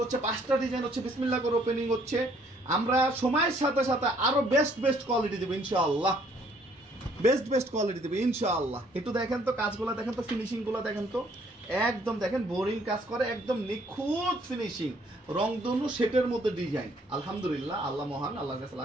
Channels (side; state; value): both; normal; correlation 0.64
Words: হচ্ছে 5টা ডিজাইন হচ্ছে বিসমিল্লাহ করে ওপেনিং হচ্ছে। আমরা সময়ের সাথে সাথে আরো বেস্ট কোয়ালিটি দেবো ইনশাআল্লাহ, বেস্ট কোয়ালিটি দেবে ইনশাআল্লাহ। একটু দেখেন তো কাজগুলো, দেখেন তো ফিনিশিং গুলো দেখেন তো, একদম দেখেন বোরিং কাজ করে, একদম নিখুঁত ফিনিশিং, রংধনু সেটের মধ্যে ডিজাইন। আলহামদুলিল্লাহ, আল্লাহ মহান, আল্লাহর কাছে